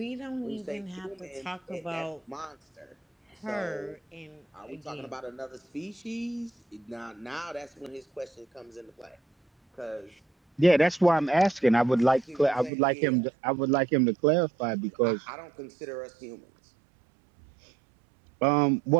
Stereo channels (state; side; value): drops out; left; at 12.7 s